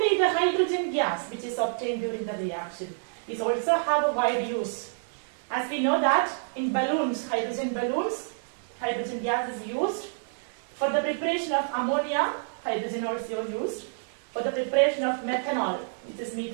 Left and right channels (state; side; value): silent; left; digital silence